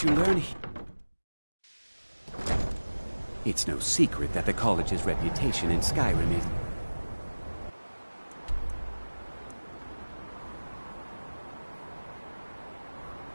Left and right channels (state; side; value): inverted; both; correlation -1.00